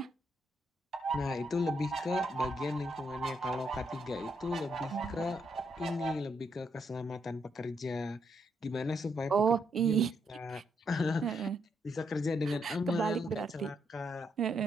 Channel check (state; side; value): normal; both; correlation 0.77